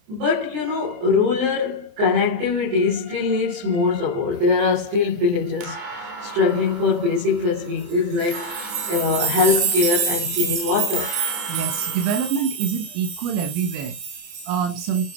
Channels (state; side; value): late; left; 29 ms